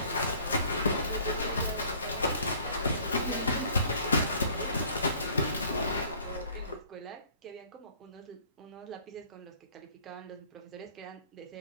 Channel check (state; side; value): inverted; both; correlation -0.55